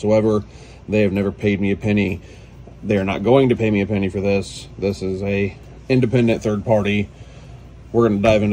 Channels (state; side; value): identical; both; correlation 1.00